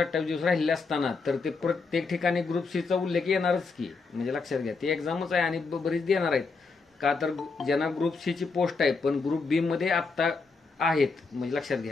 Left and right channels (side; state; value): right; quieter; 4.3 dB